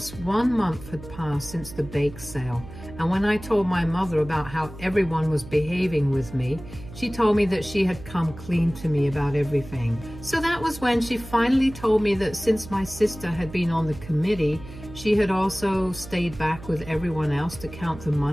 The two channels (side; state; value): right; noise; hum, 15 dB below the sound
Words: 1 month had passed since the bake sale, and when I told my mother about how everyone was behaving with me, she told me that she had come clean to me about everything. So that was when she finally told me that since my sister had been on the committee, she had also stayed back with everyone else to count the